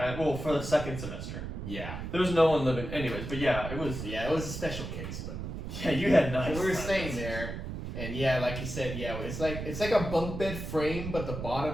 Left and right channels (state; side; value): noise; right; rumble, 6 dB below the sound